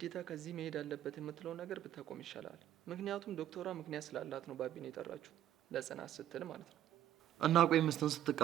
ከዚህ መሄድ አለበት የምትለው ነገር ብታቆም ይሻላል። ምክንያቱም ዶክተሯ ምክንያት ስላላት ነው ባቢን የጠራችሁ፣ ለጽናት ስትል ማለት ነው። እና ቆይ ሚስትን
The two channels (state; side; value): quieter; left; 11.8 dB